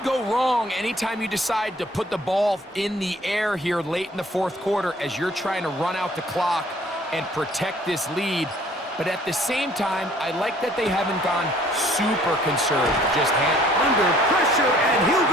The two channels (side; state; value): both; normal; correlation 0.57